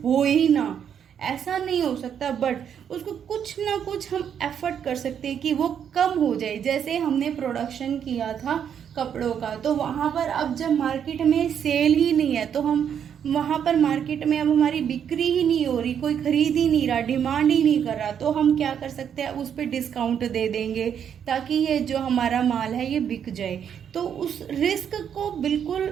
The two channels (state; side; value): quieter; left; 8.4 dB